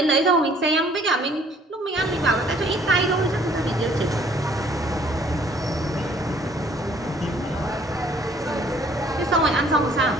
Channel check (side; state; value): both; normal; correlation 0.59